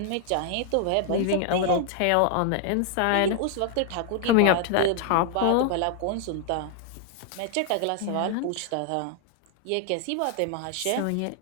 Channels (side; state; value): both; different; correlation 0.00